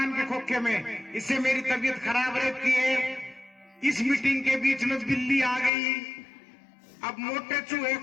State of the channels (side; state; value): right; drops out; at 5.7 s